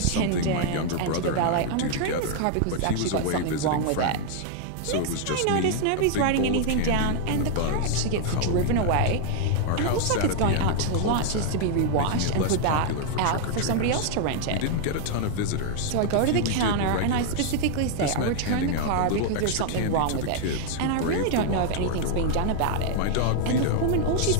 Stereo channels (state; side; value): different; both; correlation 0.00